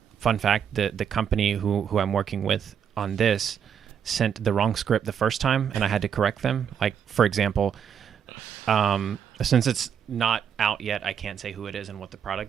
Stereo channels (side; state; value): left; quieter; 8.1 dB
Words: fact: the company who I'm working with on this sent the wrong script the first time, and I had to correct them. Like, for example, since it's not out yet, I can't say who it is and what the